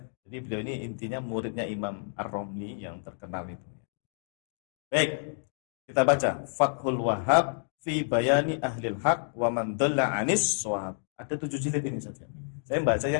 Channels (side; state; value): right; silent; digital silence